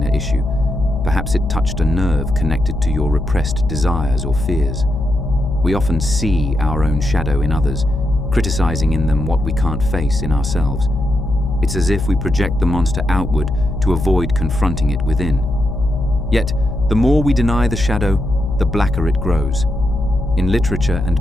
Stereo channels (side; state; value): left; noise; hum, 4 dB below the sound